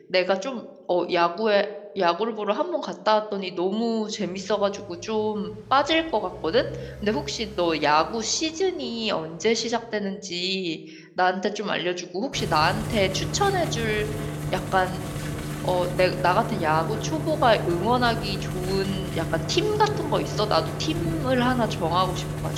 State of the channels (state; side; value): identical; both; correlation 1.00